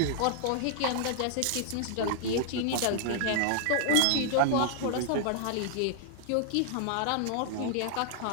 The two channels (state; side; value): different; both; correlation -0.01